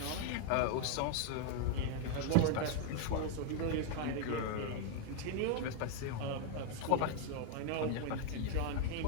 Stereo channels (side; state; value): both; different; correlation 0.00